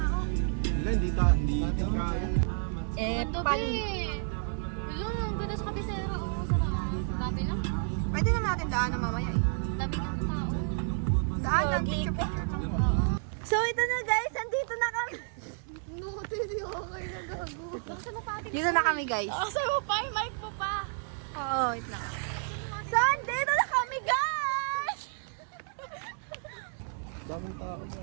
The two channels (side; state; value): left; silent; 57 dB below the other